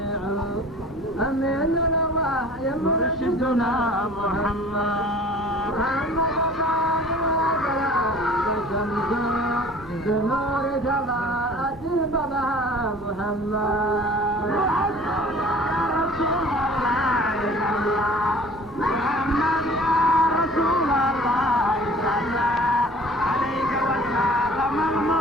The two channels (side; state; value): both; normal; correlation 0.47